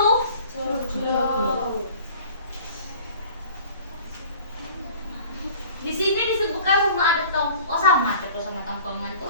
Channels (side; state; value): both; inverted; correlation -0.47